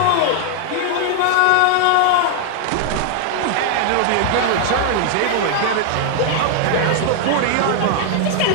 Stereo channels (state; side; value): different; both; correlation 0.00